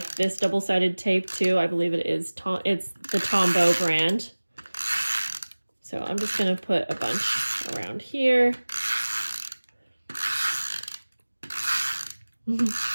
this double-sided tape too. I believe it is, it's the Tombow brand. So I'm just going to put a bunch around here.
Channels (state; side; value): inverted; both; correlation -1.00